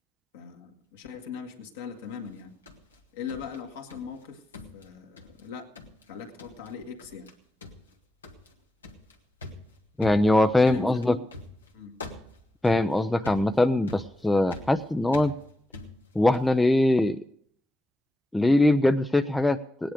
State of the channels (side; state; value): both; normal; correlation 0.90